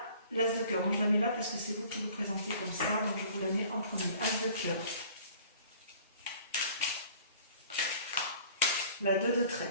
l'as de cœur. Donc je la mets là parce que c'est vous qui vous présentez comme ça. Donc je vous la mets en premier. As de cœur. La 2 de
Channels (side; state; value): both; inverted; correlation -0.50